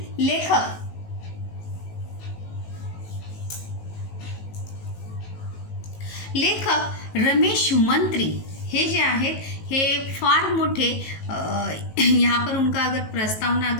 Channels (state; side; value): late; right; 18 ms